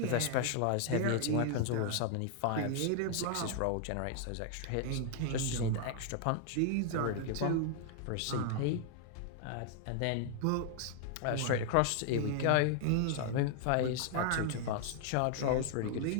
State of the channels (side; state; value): both; different; correlation 0.00